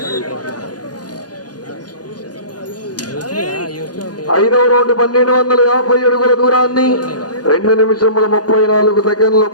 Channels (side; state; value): right; late; 0.69 ms